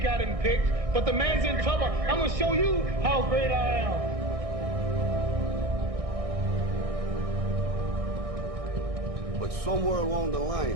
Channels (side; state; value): left; late; 1.6 ms